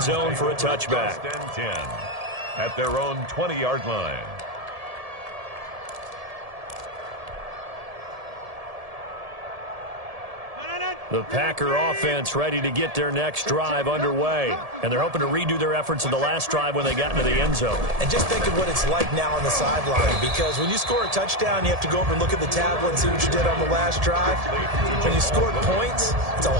zone for a touchback. 1st and 10 at their own 20-yard line. The Packer offense ready to get their next drive underway. And they're hoping to redo their efforts in the last drive when they got into the end zone. And just think of what it's like now on the sideline, because when you score a touchdown, you have to go over and look at the tablet and see what you did on the last drive. When you scored points, it's a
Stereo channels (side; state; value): left; late; 1.7 ms